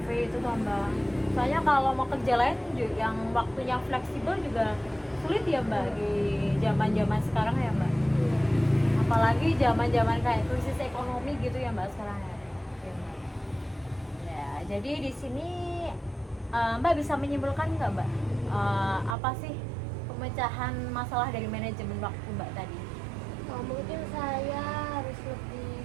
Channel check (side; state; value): left; drops out; at 19.2 s